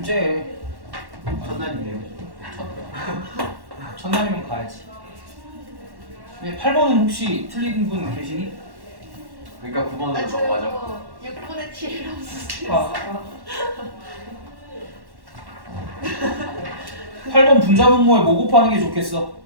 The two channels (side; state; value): left; late; 1.1 ms